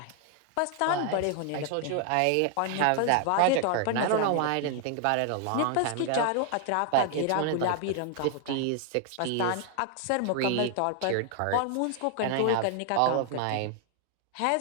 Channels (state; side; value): different; both; correlation 0.00